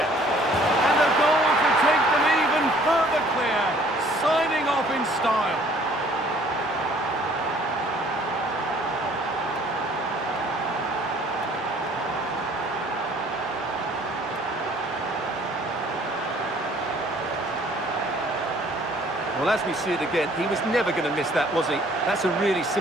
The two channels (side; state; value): both; normal; correlation 0.57